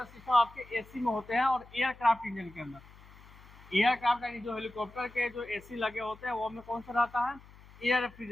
सिस्टम आपके AC में होते हैं और एयरक्राफ्ट इंजन के अंदर। एयरक्राफ्ट यानी जो हेलीकॉप्टर के जो AC लगे होते हैं वो में कौन सा रहता है, एयर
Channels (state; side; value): noise; left; hum, 22 dB below the sound